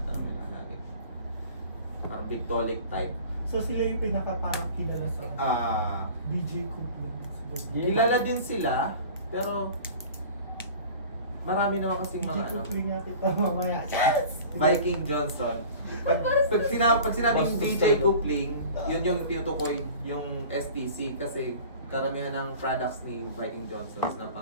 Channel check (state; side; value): inverted; both; correlation -0.42